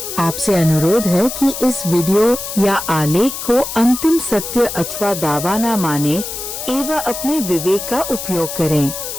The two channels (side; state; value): left; noise; hiss, 7 dB below the sound